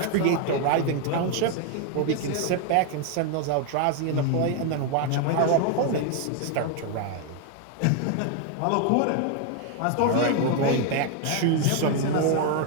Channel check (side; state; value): both; different; correlation 0.01